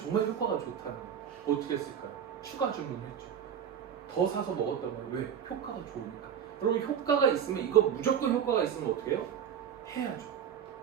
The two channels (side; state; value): left; quieter; 8.4 dB